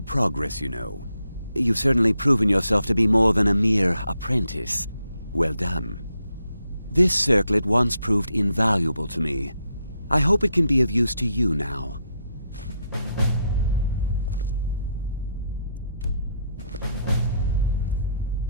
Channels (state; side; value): inverted; both; correlation -0.77